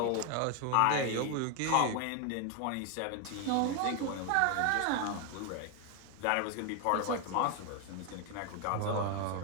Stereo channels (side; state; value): both; different; correlation 0.01